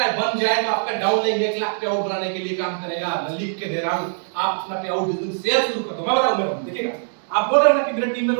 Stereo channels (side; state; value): left; silent; digital silence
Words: बन जाए तो आपका डाउनलाइन 1 लाख पे आउट बनाने के लिए काम करेगा। मैं लिख के दे रहा हूं, आप अपना पे आउट शेयर शुरू कर दो। मैं बताऊंगा, देखिएगा। आप बोल रहे हो ना कि मेरे टीम में